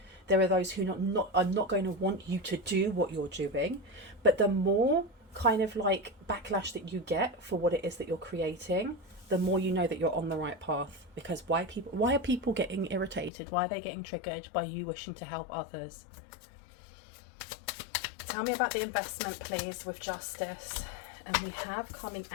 There are those who are not going to want you to do what you're doing, but the more kind of like backlash that you get for what it is that you're creating, the more you know that you're on the right path. Because why are people getting irritated? Why are they getting triggered by you wishing to help others? Tell me about the investment, please, with Justice. And we have coming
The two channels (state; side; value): drops out; right; at 13.3 s